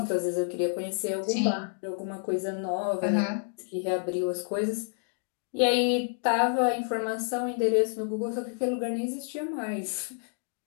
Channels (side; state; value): right; silent; 58 dB below the other